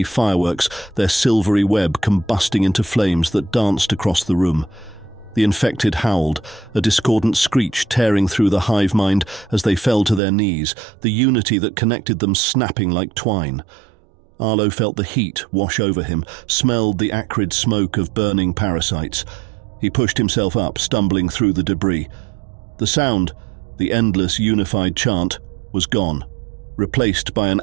fireworks, their silvery web combusting into flames that danced across the room. The infected howled, a discordant screech tearing through the hive mind as they fell to their knees, the unity that connected them snapping like twine. Arlo felt the heat wash over him, smelled the acrid smoke of burning parasites. He pushed himself up, stumbling through the debris. The sound, the endless unified chant, was gone, replaced by an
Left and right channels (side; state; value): left; drops out; at 10.2 s